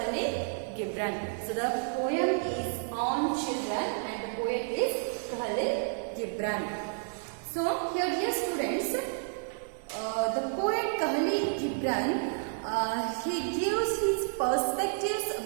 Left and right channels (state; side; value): silent; left; digital silence